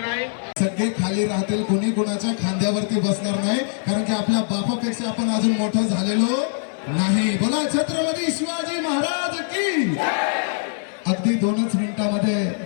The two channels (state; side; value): silent; right; digital silence